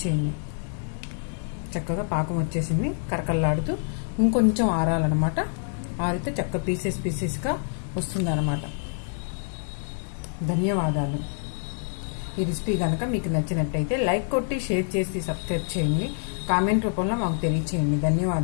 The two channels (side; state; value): right; silent; digital silence